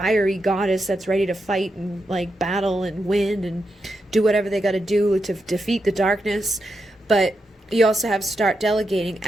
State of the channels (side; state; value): both; normal; correlation 0.85